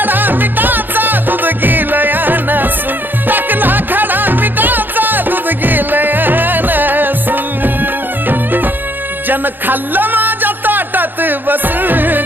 मिठाचा दूध गेलं नसून टाकला खडा मिठाचा दूध गेलं नसून जन खाल्लं माझ्या ताटात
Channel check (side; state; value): left; late; 0.092 ms